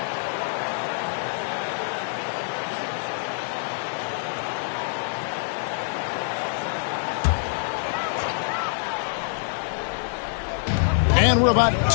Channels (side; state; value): right; silent; digital silence